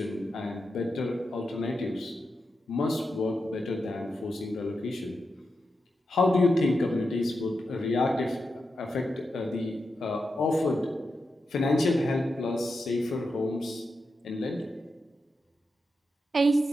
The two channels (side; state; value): both; normal; correlation 0.88